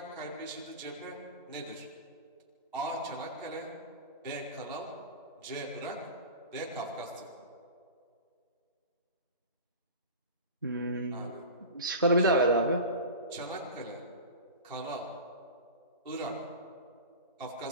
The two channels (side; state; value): both; inverted; correlation -0.31